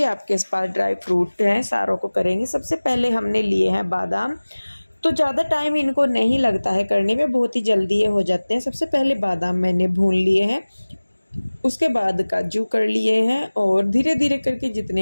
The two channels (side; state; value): both; inverted; correlation -1.00